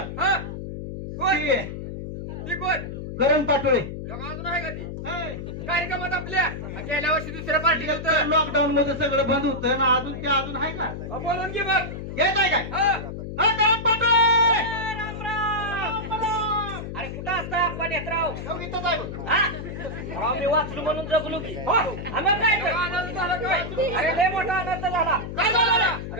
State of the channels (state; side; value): noise; left; hum, 7 dB below the sound